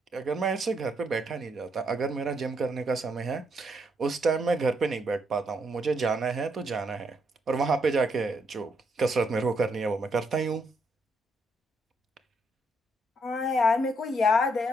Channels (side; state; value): both; normal; correlation 0.75